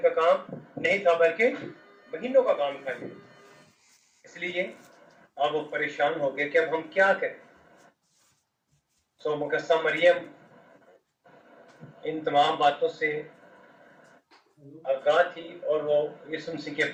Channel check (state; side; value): identical; both; correlation 1.00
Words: کام نہیں تھا بلکہ مہینوں کا کام تھا. اس لیے اب وہ پریشان ہو گئے کہ اب ہم کیا کریں. سو مقدسہ مریم ان تمام باتوں سے آگاہ تھی اور وہ یسوع مسیح کے